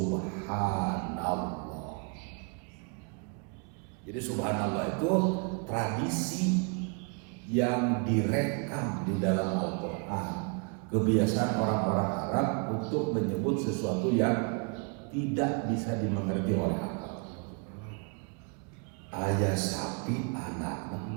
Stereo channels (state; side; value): quieter; left; 36.0 dB